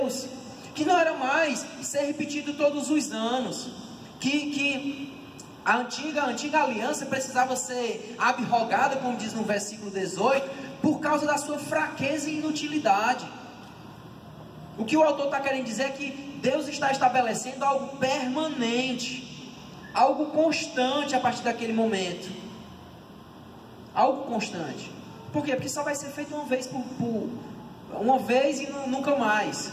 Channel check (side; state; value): both; identical; correlation 1.00